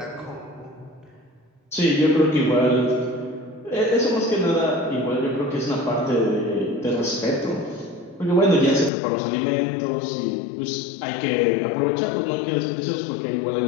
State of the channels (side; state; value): right; drops out; at 8.9 s